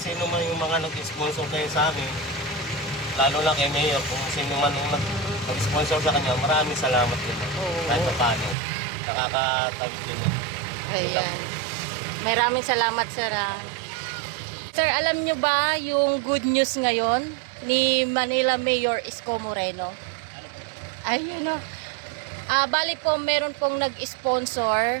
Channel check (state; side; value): drops out; left; at 8.6 s